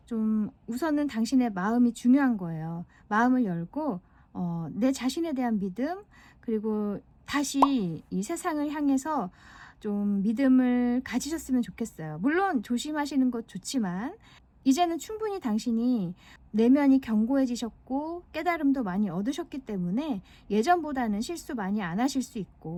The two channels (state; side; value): identical; both; correlation 1.00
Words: 좀 우선은 당신의 마음이 중요한 거예요. 마음을 열고 내 자신에 대한 믿음 그리고 다시 이 세상을 향해서 좀 믿음을 가지셨으면 좋겠어요. 물론 조심하시는 것 좋지만 이제는 충분히 당신이 내면이 견고해지셨고 깨달음도 많이 얻으셨기 때문에 예전보다는 실수 많이 안 하실 수